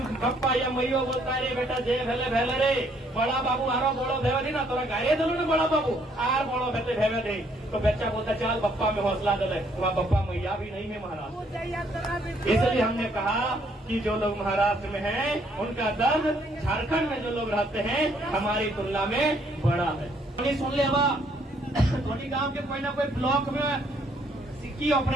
पप्पा या मैयो बोलता है रे बेटा जे भेले भेले रे, बड़ा बाबू आरो बड़ो भेवे नहीं ना तोरा गाये दिलो ना बड़ा बाबू आर बड़ो भेते भेवे दे। तो बच्चा बोलता चल पप्पा में हौसला दे, वहाँ पप्पा मैया भी नहीं है महाराष्ट्र। इसलिए हमने कहा कि जो लोग महाराष्ट्र में हैं उनका दर्द झारखंड में जो लोग रहते हैं हमारी तुलना में बड़ा है। सुन ले धोनी गाँव के कोई ना कोई ब्लॉक में सिक्की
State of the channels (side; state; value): both; normal; correlation 0.67